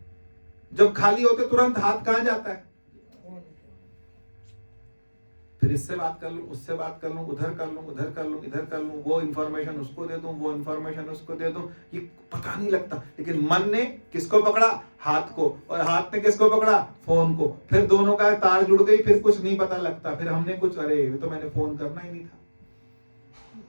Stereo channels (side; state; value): both; inverted; correlation -1.00